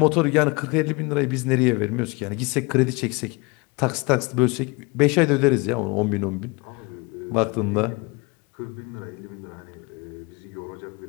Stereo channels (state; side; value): quieter; right; 27.1 dB